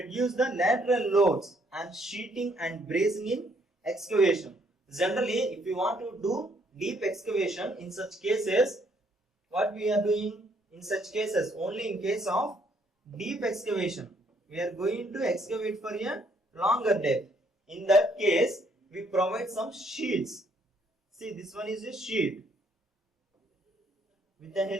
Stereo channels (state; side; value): normal; both; correlation 0.68